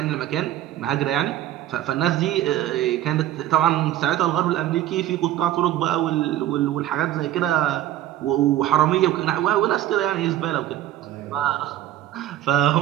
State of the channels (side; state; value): left; quieter; 13.0 dB